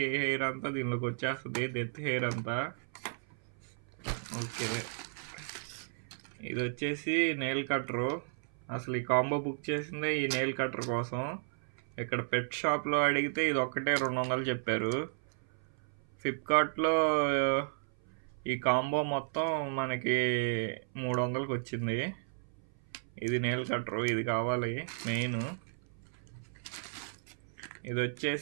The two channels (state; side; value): silent; left; 55 dB below the other